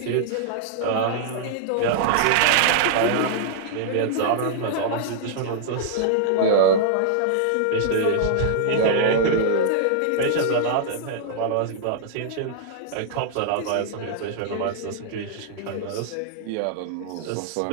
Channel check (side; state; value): both; different; correlation -0.01